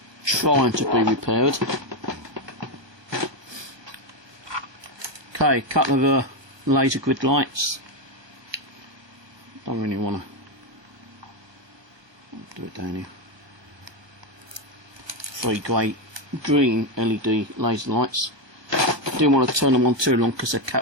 trying to be repaired. Okay, couple of laser grid lights. Don't really want to do it down here. 3 green LED laser lights. Didn't want to turn them on too long because the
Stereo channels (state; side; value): late; left; 1.3 ms